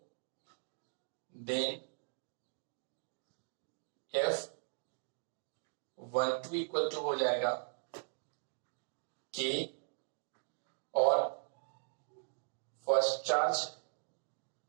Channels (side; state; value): left; silent; digital silence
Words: देन F12 इक्वल टू हो जाएगा K और first charge